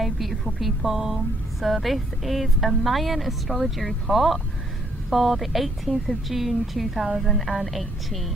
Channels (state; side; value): normal; both; correlation 0.70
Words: beautiful people, so this is a Mayan astrology report for the 18th of June